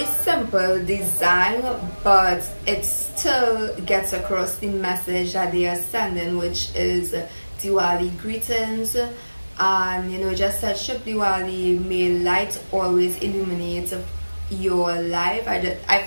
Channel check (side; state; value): both; inverted; correlation -1.00